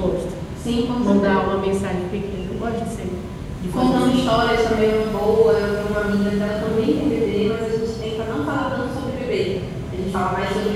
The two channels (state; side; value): identical; both; correlation 1.00